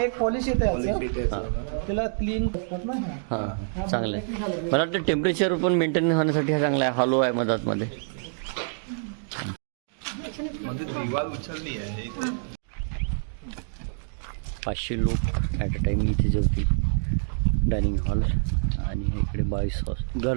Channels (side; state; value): left; silent; digital silence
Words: एक पॉलिश येते पॉलिश याचं. येते याचं. त्याला क्लीन करतात ना. हां चांगलं आहे. मला वाटतं टेम्परेचर पण मेंटेन होण्यासाठी हा चांगला आहे. हॉलो आहे मधातमध्ये. म्हणजे दिवाल उचलली आहे. 500 लोक ॲट अ टाईम इथे जेवतील. डायनिंग हॉल आणि इकडे बॉईज